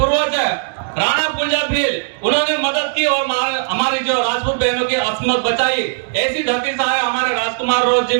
है राणा पुंजा भील, उन्होंने मदद की और हमारी जो राजपूत बहनों की अस्मत बचाई। ऐसी धरती से आए हमारे राजकुमार रोज जी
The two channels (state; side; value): silent; left; 68 dB below the other